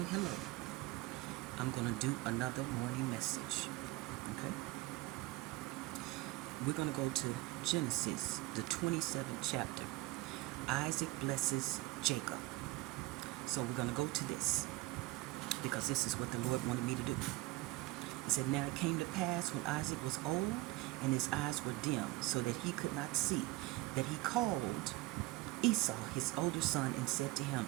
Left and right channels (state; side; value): quieter; left; 19.5 dB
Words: hello. I'm going to do another morning message. Okay? We're going to go to Genesis, the 27th chapter. Isaac blesses Jacob. So we're going to go to this because this is what the Lord wanted me to do. It said, "Now it came to pass when Isaac was old and his eyes were dim, so that he could not see, that he called Esau, his older son, and said to him,